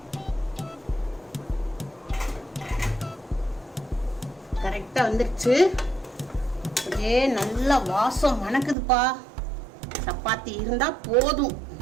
கரெக்டாக வந்துருச்சு. அப்படியே நல்லா வாசம் மணக்குதுப்பா. சப்பாத்தி இருந்தால் போதும்.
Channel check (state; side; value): drops out; left; at 8.8 s